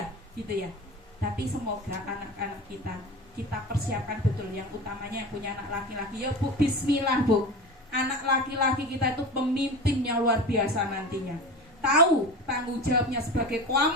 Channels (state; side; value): normal; both; correlation 0.30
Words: gitu ya. Tapi semoga anak-anak kita persiapkan betul, yang utamanya yang punya anak laki-laki ya Bu, bismillah Bu. Anak laki-laki kita itu pemimpinnya luar biasa nantinya. Tahu tanggung jawabnya sebagai